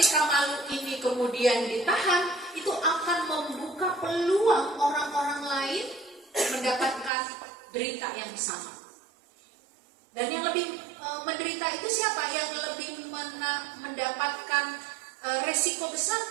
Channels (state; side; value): drops out; left; at 7.1 s